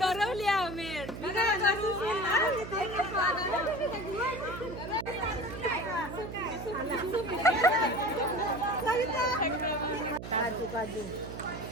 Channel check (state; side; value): noise; right; hum, 9 dB below the sound